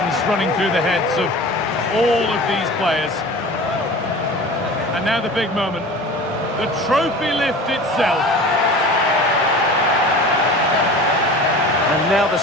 running through the heads of all of these players. And now the big moment. The trophy lift itself. And now the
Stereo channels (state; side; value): normal; both; correlation 0.38